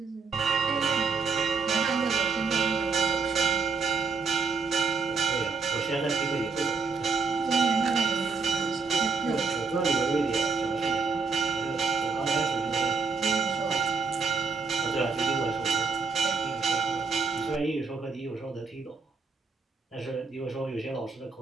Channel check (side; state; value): left; quieter; 4.8 dB